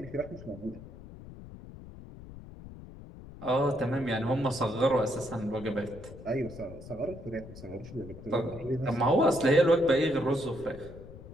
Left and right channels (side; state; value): left; noise; rumble, 15 dB below the sound